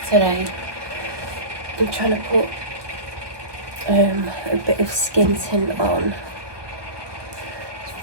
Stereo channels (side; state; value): left; late; 1.2 ms